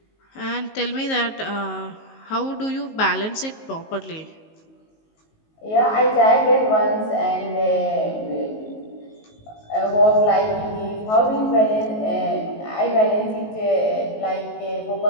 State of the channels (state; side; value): late; right; 19 ms